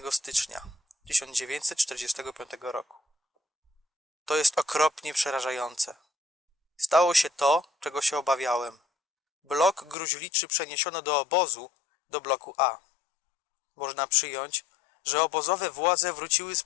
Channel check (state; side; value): drops out; right; at 10.0 s